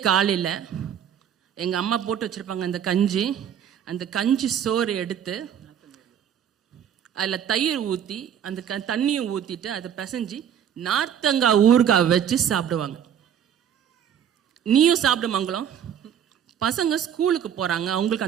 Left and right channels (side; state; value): left; quieter; 9.1 dB